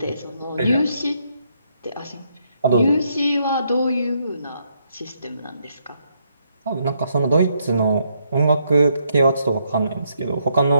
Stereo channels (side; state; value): both; inverted; correlation -0.76